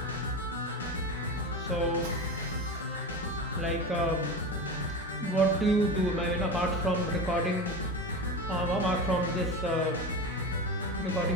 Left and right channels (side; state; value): both; normal; correlation 0.25